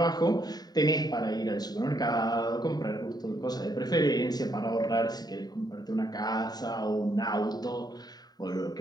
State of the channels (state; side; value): late; right; 0.19 ms